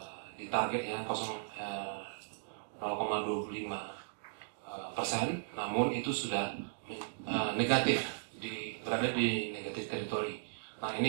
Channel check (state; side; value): silent; left; digital silence